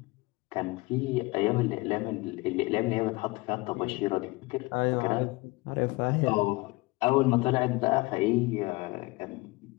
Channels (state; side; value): quieter; right; 23.6 dB